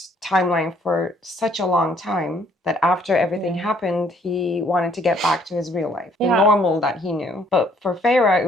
timeline for such a long time that after everything happened, he wanted to get back to his real life, the normal that he knew. But for Farah, it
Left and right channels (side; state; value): both; normal; correlation 0.64